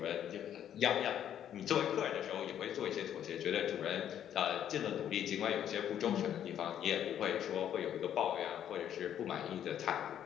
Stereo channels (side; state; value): right; quieter; 10.1 dB